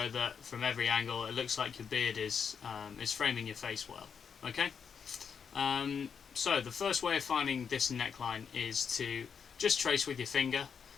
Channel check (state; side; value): quieter; right; 6.7 dB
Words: that from every angle it looks like your beard is framing your face well. Okay. So the first way of finding this neckline is to just trace with your finger.